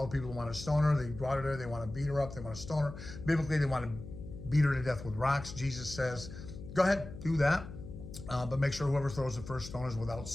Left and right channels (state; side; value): noise; left; hum, 12 dB below the sound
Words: the people who want to stone her, they brought her there. They want to beat her up. They want to stone her. Biblically, they want to beat her to death with rocks. Jesus says, go ahead, do that. But make sure whoever throws the first stone is without